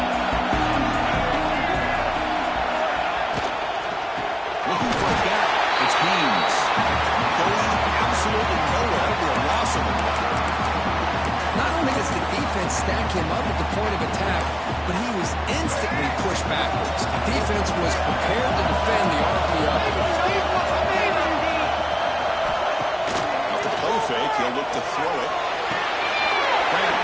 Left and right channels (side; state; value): both; identical; correlation 1.00